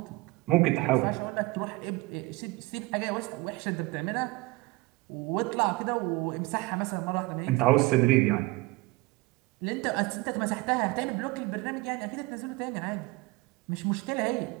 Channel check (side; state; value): left; quieter; 21.6 dB